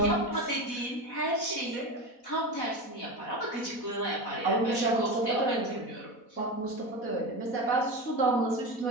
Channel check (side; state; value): right; late; 4.1 ms